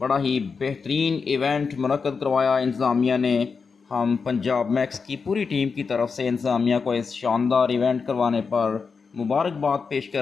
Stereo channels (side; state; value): right; quieter; 5.2 dB